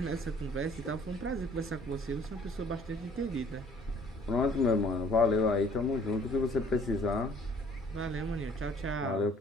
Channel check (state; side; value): normal; both; correlation 0.56